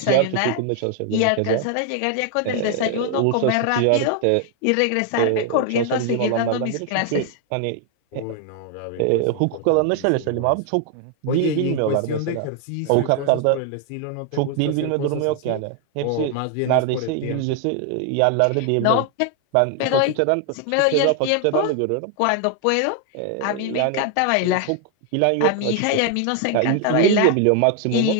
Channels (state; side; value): different; both; correlation 0.00